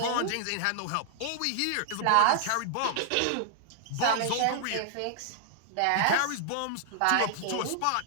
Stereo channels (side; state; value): both; different; correlation -0.01